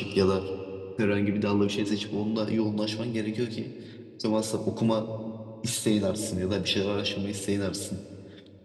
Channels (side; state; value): both; identical; correlation 1.00